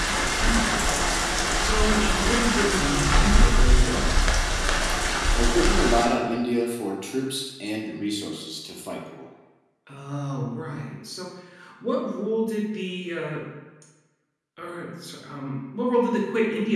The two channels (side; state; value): both; identical; correlation 1.00